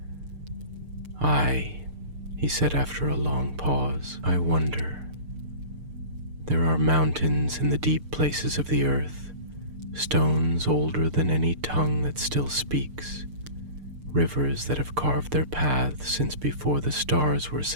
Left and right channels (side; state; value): left; late; 6.7 ms